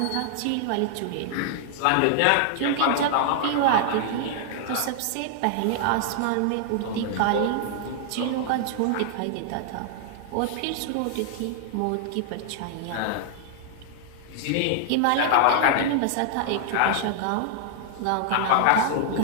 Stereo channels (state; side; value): different; both; correlation -0.01